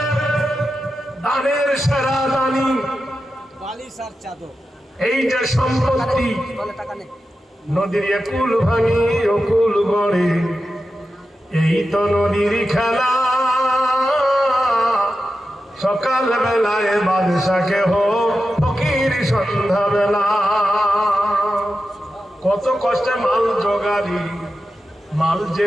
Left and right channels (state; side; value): normal; both; correlation 0.91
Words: দানের সেরা দানি, এই যে সম্পত্তি, নদীর একুল ভাঙি অকুল গড়ে, এই তো নদীর খেলা। সকাল বেলায় বাদশাকে হো ফকির সন্ধ্যা বেলা। কত কষ্টে মাল জোগাড়ি, মাল